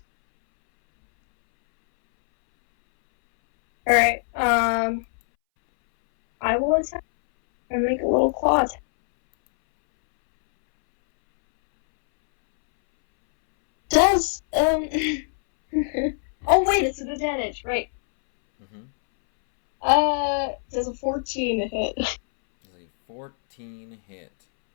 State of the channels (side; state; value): right; silent; 64 dB below the other